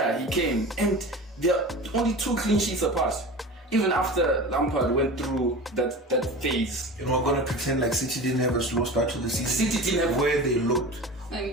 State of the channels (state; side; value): normal; both; correlation 0.33